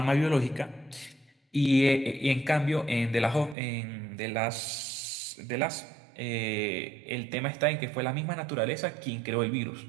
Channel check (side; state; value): left; drops out; at 3.6 s